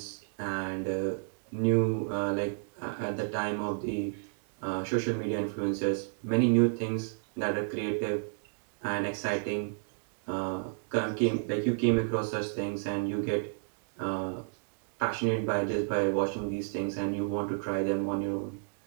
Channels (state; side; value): silent; left; digital silence